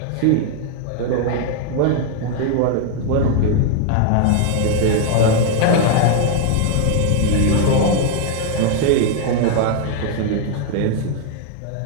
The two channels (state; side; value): different; both; correlation 0.00